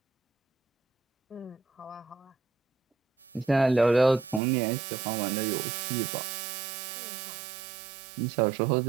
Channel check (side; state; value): left; drops out; at 4.4 s